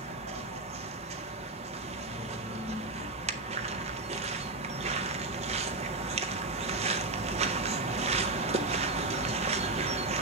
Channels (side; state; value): left; quieter; 3.1 dB